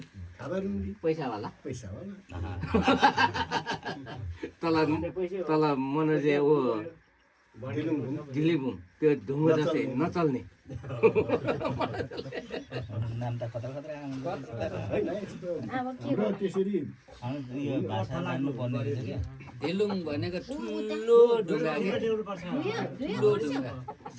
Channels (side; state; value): both; identical; correlation 1.00